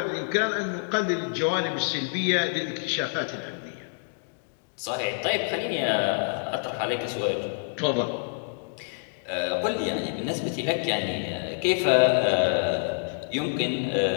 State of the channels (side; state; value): right; silent; 60 dB below the other